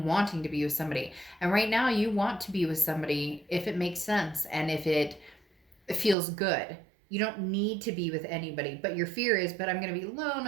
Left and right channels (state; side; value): drops out; left; at 6.2 s